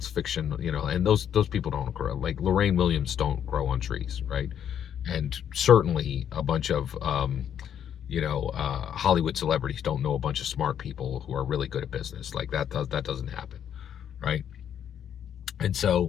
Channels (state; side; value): quieter; right; 9.2 dB